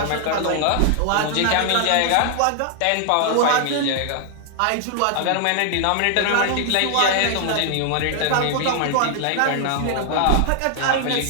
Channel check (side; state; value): both; different; correlation 0.00